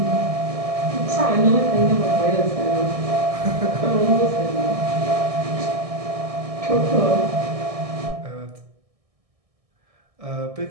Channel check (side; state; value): left; late; 1.6 ms